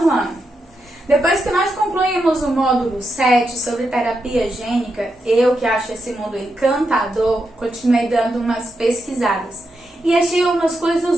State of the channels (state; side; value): normal; both; correlation 0.85